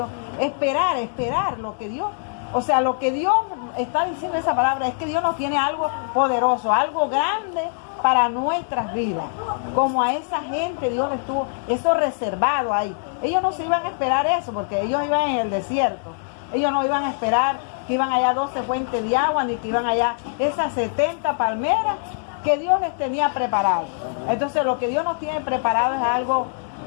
Esperar lo que Dios, o sea, lo que Dios está diciendo esa palabra es que Dios nos tiene algo poderoso, algo grande para nuestras vidas. Como a esa gente Dios les tuvo eso reservado ahí. Ellos no se iban a esperar eso, porque ellos iban en el desierto. Ellos no iban a esperar que iban allá 12 fuentes de agua, ni que iban allá esas 70 palmeras que Dios les tenía preparado. Entonces lo que Dios nos tiene preparado es algo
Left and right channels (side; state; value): right; silent; digital silence